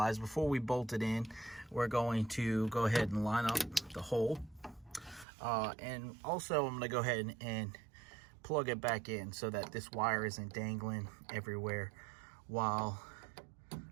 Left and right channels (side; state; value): left; drops out; at 5.2 s